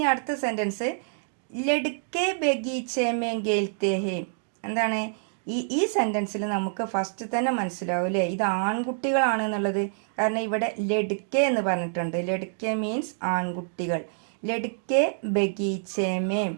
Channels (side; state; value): left; silent; digital silence